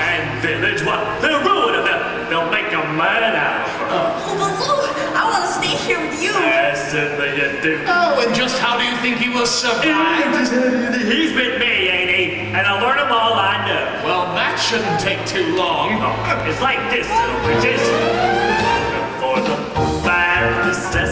village? What? They'll ruin them. They'll make a man out of her. Oh, Baloo, I want to stay here with you. Yes, certainly you do. Oh, and just how do you think he will survive? He's with me, ain't he? And I'll learn him all I know. Well, that shouldn't take too long. It's like this, little britches. For the bare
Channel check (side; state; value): both; identical; correlation 1.00